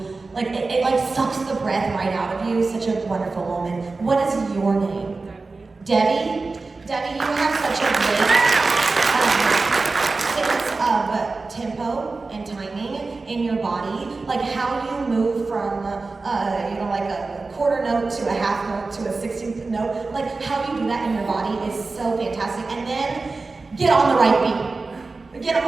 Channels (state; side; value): quieter; left; 3.8 dB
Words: like, it like sucks the breath right out of you. Such a wonderful moment. What is your name? Debbie? Debbie, you have such a great sense of tempo and timing in your body. Like how you move from, like a quarter note to a half note to a 16th note. Like how you do that in your body is so fantastic. And then get on the right beat. Get